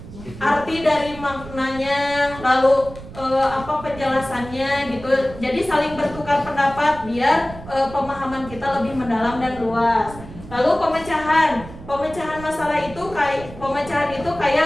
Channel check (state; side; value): noise; right; rumble, 15 dB below the sound